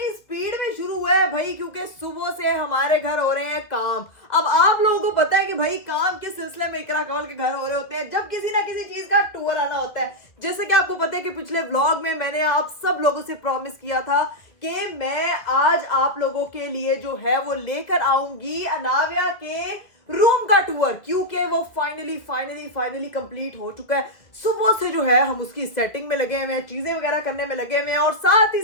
स्पीड में शुरू हुआ है भाई, क्योंकि सुबह से हमारे घर हो रहे हैं काम। अब आप लोगों को पता है कि भाई काम के सिलसिले में इकरा कंवल के घर हो रहे होते हैं जब किसी ना किसी चीज का टूर आना होता है। जैसे कि आपको पता है कि पिछले व्लॉग में मैंने आप सब लोगों से प्रॉमिस किया था कि मैं आज आप लोगों के लिए जो है वो लेकर आऊंगी अनाव्या के रूम का टूर, क्योंकि वो फाइनली कंप्लीट हो चुका है। सुबह से जो है हम उसकी सेटिंग में लगे हुए हैं, चीजें वगैरह करने में लगे हुए हैं और साथ ही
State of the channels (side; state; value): right; late; 2.0 ms